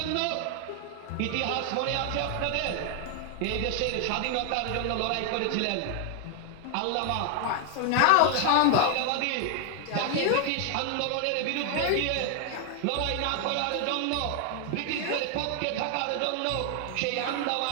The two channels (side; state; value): both; different; correlation 0.00